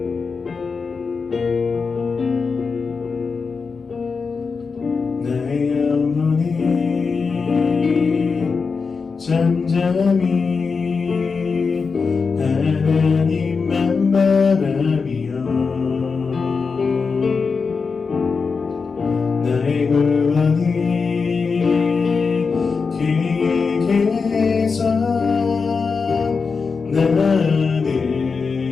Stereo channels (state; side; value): quieter; right; 5.0 dB